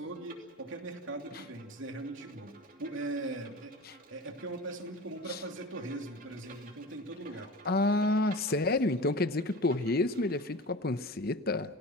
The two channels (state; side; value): normal; both; correlation 0.34